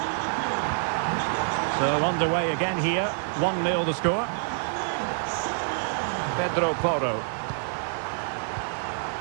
So underway again here. 1-0 the score. Pedro Porro.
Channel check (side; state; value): left; silent; 60 dB below the other